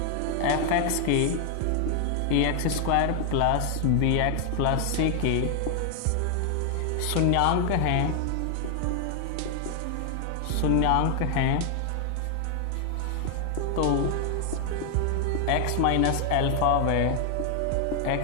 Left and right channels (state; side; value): different; both; correlation 0.00